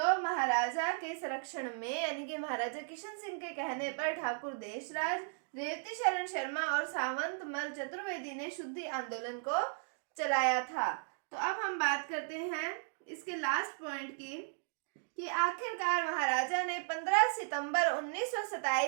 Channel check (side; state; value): left; silent; digital silence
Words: महाराजा के संरक्षण में यानी कि महाराजा किशन सिंह के कहने पर ठाकुर देशराज, रेवती शरण शर्मा और सावंतमल चतुर्वेदी ने शुद्धि आंदोलन को चलाया था। तो अब हम बात करते हैं इसके लास्ट पॉइंट की कि आखिरकार महाराजा ने 15 सितंबर